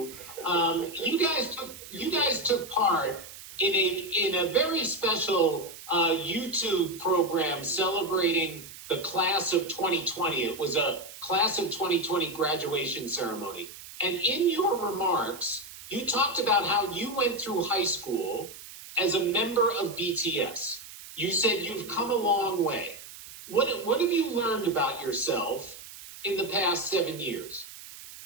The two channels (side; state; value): right; noise; hiss, 15 dB below the sound